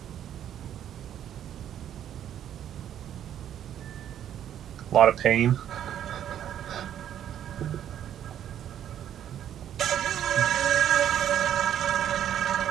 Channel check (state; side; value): quieter; left; 10.4 dB